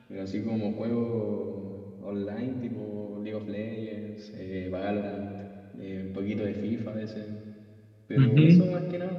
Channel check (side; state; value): both; identical; correlation 1.00